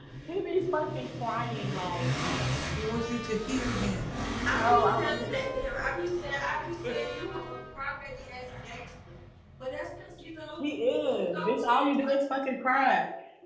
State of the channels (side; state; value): both; identical; correlation 1.00